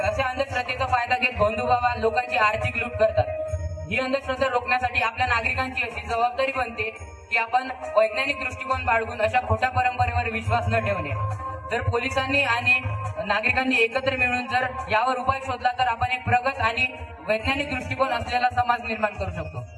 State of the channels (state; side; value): identical; both; correlation 1.00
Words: असे अंधश्रद्धेचा फायदा घेत भोंदू बाबा लोकांची आर्थिक लूट करतात. ही अंधश्रद्धा रोखण्यासाठी आपल्या नागरिकांची अशी जबाबदारी बनते की आपण वैज्ञानिक दृष्टिकोन बाळगून अशा खोट्या परंपरेवर विश्वास न ठेवणे. जर पोलिसांनी आणि नागरिकांनी एकत्र मिळून जर यावर उपाय शोधला तर आपण एक प्रगत आणि वैज्ञानिक दृष्टिकोन असलेला समाज निर्माण करू शकतो.